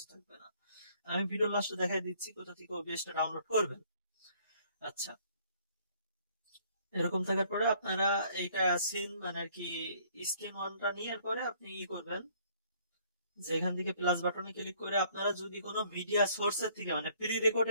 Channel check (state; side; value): inverted; both; correlation -0.61